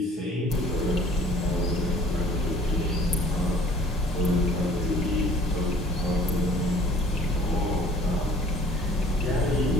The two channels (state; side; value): normal; both; correlation 0.53